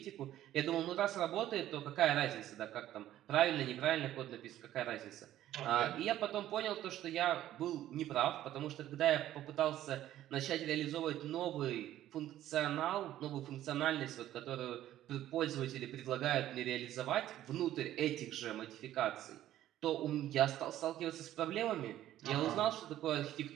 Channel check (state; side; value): quieter; left; 13.0 dB